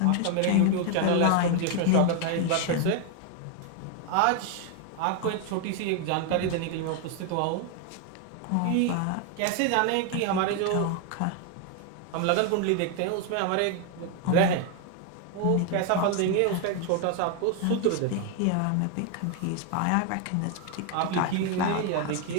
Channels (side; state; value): both; different; correlation 0.01